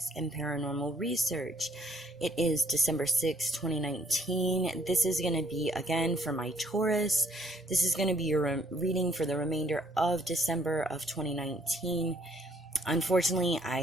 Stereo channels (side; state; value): both; normal; correlation 0.67